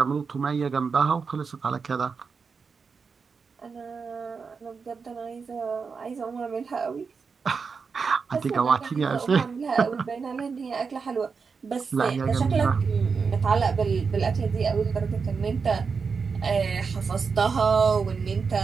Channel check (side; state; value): left; quieter; 5.3 dB